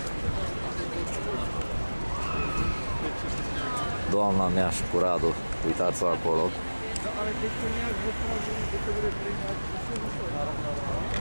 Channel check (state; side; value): inverted; both; correlation -1.00